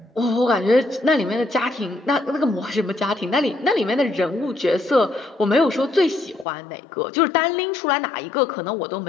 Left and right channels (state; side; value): drops out; right; at 6.5 s